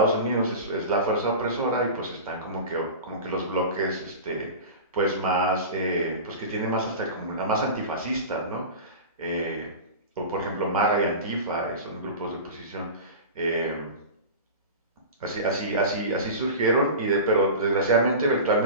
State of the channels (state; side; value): inverted; both; correlation -0.31